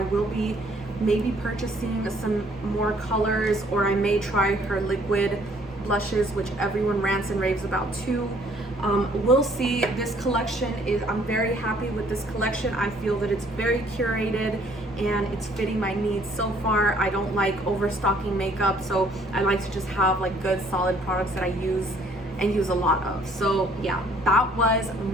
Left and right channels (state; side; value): normal; both; correlation 0.61